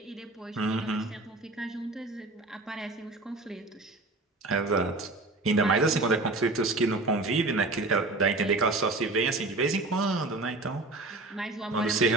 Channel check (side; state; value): left; quieter; 3.1 dB